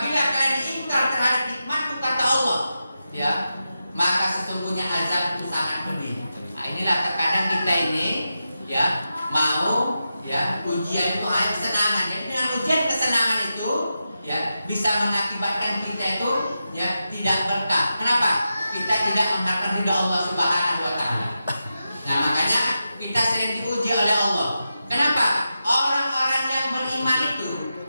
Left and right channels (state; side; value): inverted; both; correlation -0.89